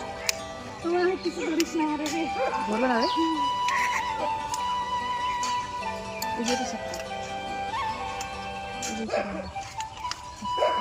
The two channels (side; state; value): both; identical; correlation 1.00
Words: তোমার কিছু ধরিস না রে, ধরবে না রে। এই যে